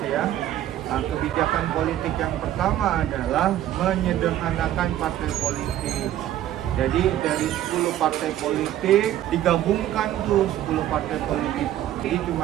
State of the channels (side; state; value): left; quieter; 12.5 dB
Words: ya, kebijakan politik yang pertama adalah menyederhanakan partai politik. Jadi dari 10 partai politik digabungkan tuh 10 partai politik. Jadi